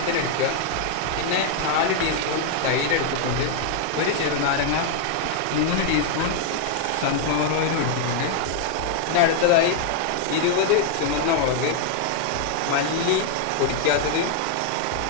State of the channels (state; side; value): different; both; correlation 0.00